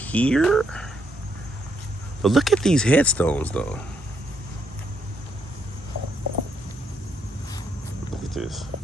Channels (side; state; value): both; normal; correlation 0.76